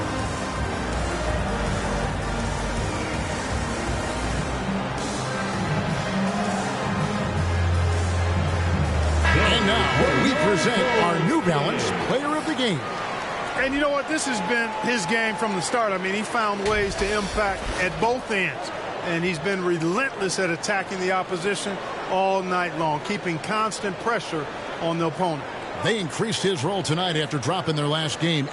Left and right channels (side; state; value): both; identical; correlation 1.00